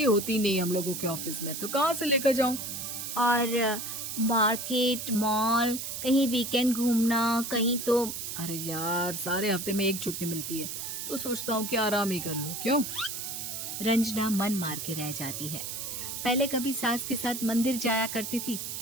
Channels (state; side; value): noise; right; hiss, 6 dB below the sound